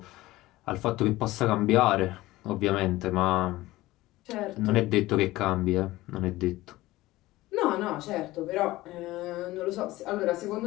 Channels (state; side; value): quieter; right; 17.9 dB